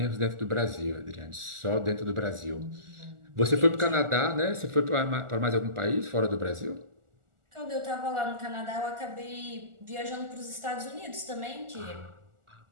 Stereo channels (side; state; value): left; late; 1.4 ms